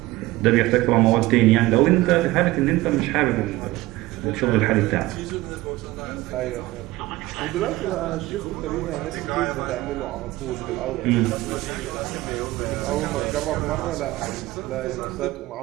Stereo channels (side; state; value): left; quieter; 18.4 dB